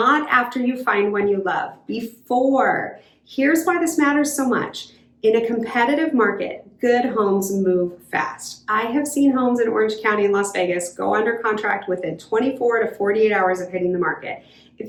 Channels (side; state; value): both; identical; correlation 1.00